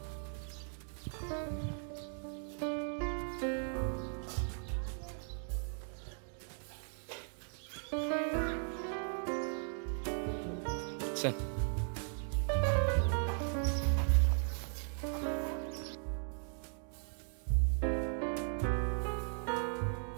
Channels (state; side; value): silent; left; 53 dB below the other